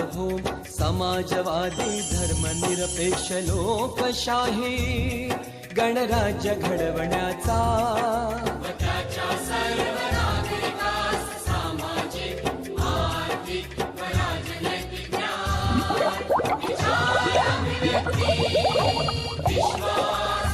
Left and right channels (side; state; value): both; identical; correlation 1.00